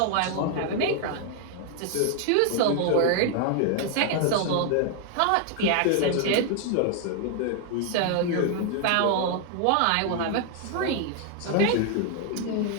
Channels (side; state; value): both; different; correlation 0.00